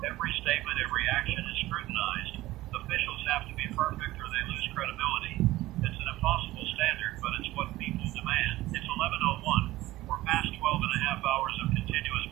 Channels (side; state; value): left; quieter; 17.1 dB